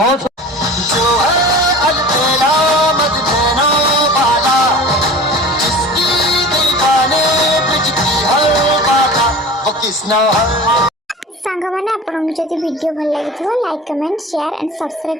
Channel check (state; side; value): normal; both; correlation 0.38